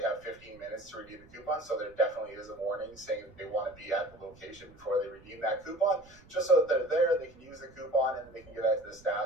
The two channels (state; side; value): noise; right; rumble, 25 dB below the sound